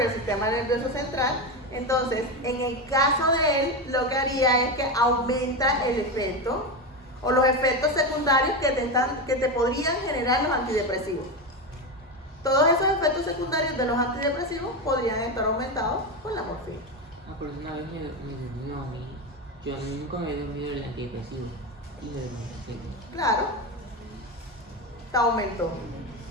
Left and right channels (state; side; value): normal; both; correlation 0.16